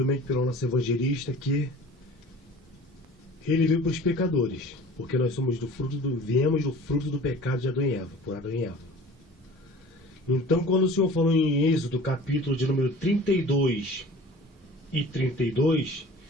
pelo nosso evangelista que ele veio para os pecadores, porque nós somos viemos do fruto do pecado de Adão e Eva, por Adão e Eva. Então, quando o Senhor falou em Êxodo, capítulo de número 32 e 32...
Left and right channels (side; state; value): both; normal; correlation 0.43